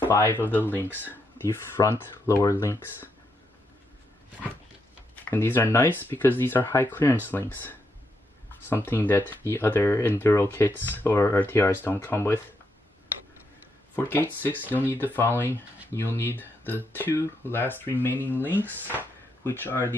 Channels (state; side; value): normal; both; correlation 0.80